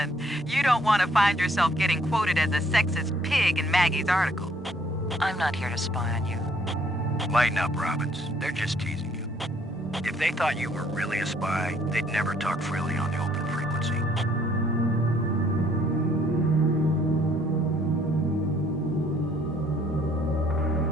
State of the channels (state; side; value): normal; both; correlation 0.64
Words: You don't want to find yourself getting quoted as a sexist pig in Maggie's article. I'm not here to spy on you. Lighten up, Robbins. They're just teasing you. If they thought you were really a spy, they'd never talk freely on the open frequency.